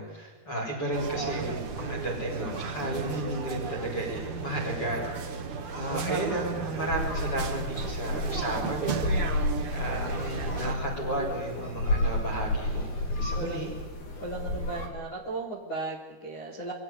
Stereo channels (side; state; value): right; late; 12 ms